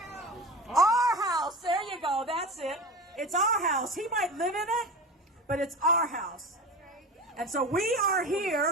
house. There you go. That's it. It's our house. He might live in it, but it's our house. And so we are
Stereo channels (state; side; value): normal; both; correlation 0.30